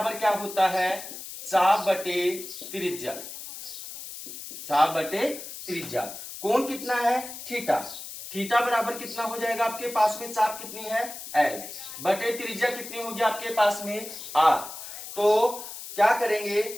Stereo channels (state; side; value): noise; left; hiss, 11 dB below the sound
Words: क्या होता है, चाप बटे त्रिज्या। चाप बटे त्रिज्या। कोण कितना है, थीटा। थीटा बराबर कितना हो जाएगा आपके पास में, चाप कितनी है, एल बटे त्रिज्या कितनी होगी आपके पास में, आर। तो क्या करेंगे,